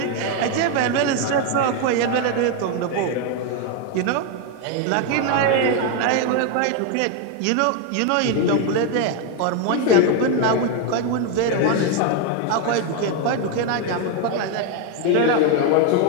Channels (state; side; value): different; both; correlation 0.01